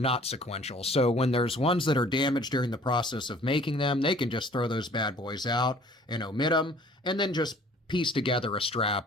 sequential. So when there's ones that are damaged during the process of making them, they can just throw those bad boys out and omit them, and then just piece together a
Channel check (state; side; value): normal; both; correlation 0.53